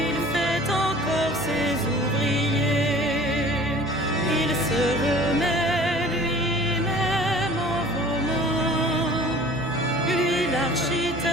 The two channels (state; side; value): normal; both; correlation 0.47